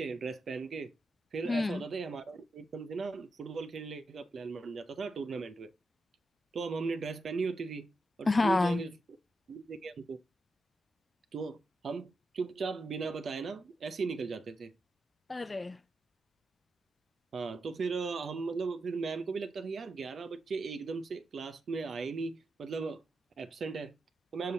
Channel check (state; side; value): normal; both; correlation 0.87